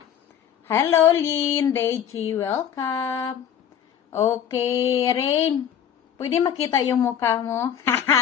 Hello, Lynn, Deji, welcome. Okay, Rain. Pwede makita yung mukha mo?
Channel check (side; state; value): right; quieter; 9.1 dB